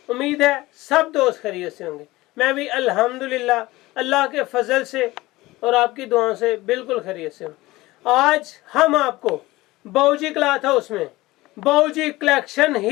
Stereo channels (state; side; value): quieter; right; 19.2 dB